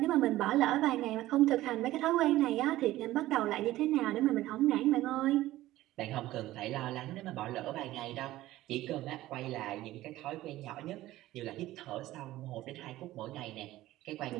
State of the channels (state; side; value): quieter; left; 15.9 dB